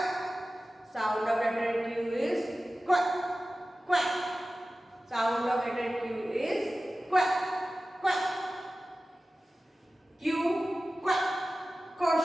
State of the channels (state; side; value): normal; both; correlation 0.95